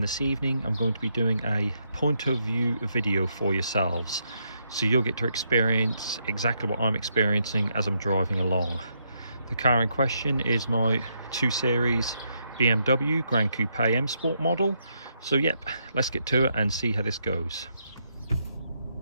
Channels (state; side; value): inverted; both; correlation -0.78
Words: this evening I'm going to be doing a point of view video for yourselves. So you'll get to experience exactly what I'm experiencing as I'm driving along. The car in question is my 2 Series BMW Gran Coupe Msport model. So yep, let's get to it and see how this goes.